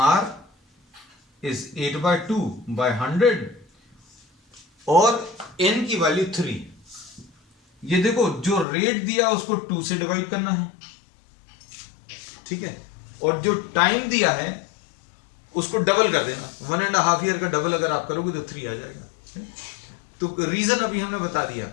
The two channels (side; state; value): right; drops out; at 8.7 s